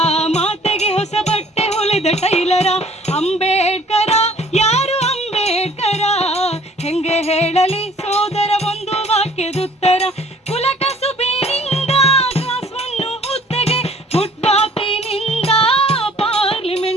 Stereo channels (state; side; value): normal; both; correlation 0.55